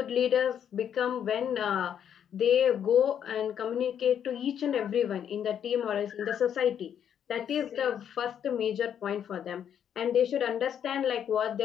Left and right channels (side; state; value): right; quieter; 9.0 dB